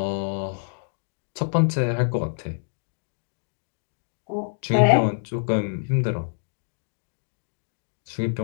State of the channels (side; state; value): right; silent; digital silence